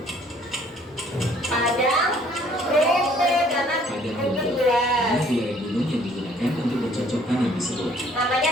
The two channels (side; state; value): both; normal; correlation 0.59